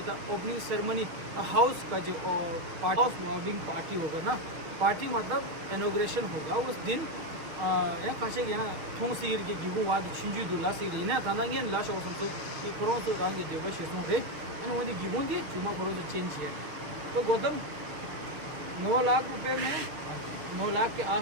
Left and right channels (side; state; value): left; late; 6.6 ms